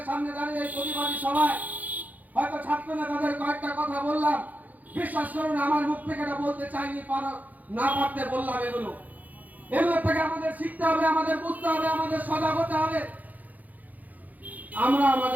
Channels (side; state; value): left; late; 0.080 ms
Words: সামনে দাঁড়িয়ে এই প্রতিবাদী সভায় হয়তো ছাত্র নেতাদের কয়েকটা কথা বললাম, বিশ্বাস করুন আমার মুখ থেকে এটা বলতে চাইনি, না পারতে বললাম। এগুলো থেকে আমাদের শিখতে হবে, আমাদের বুঝতে হবে, আমাদের সজাগ হতে হবে। আমরা